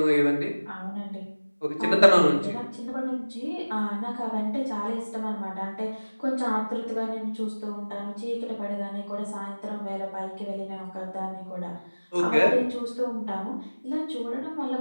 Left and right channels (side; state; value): both; inverted; correlation -1.00